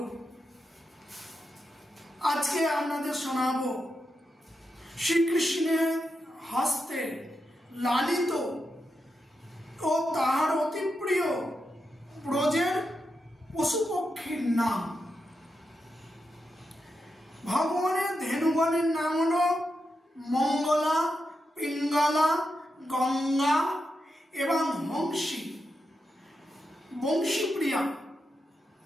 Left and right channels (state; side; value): normal; both; correlation 0.87